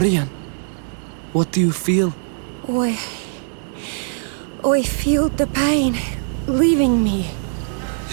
what do you feel? I feel the pain leaving me.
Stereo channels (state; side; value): silent; left; 65 dB below the other